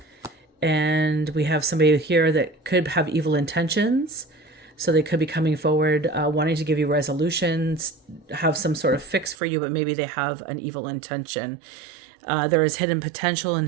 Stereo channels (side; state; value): left; drops out; at 9.3 s